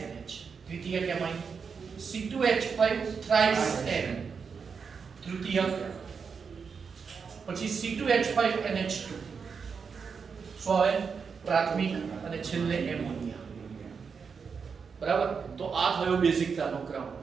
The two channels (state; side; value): quieter; left; 5.8 dB